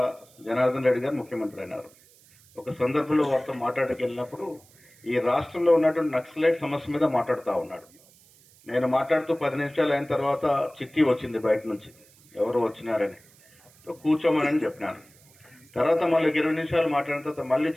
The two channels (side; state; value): right; noise; hiss, 28 dB below the sound